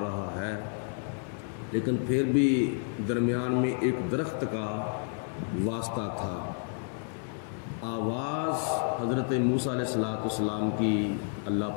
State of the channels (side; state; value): right; silent; 58 dB below the other